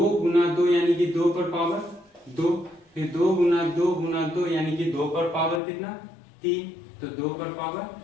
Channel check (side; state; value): right; drops out; at 5.6 s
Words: गुना 2 यानी कि 2 पर पावर 2, फिर 2 गुना 2 गुना 2 यानी कि 2 पर पावर कितना 3, तो 2 पर पावर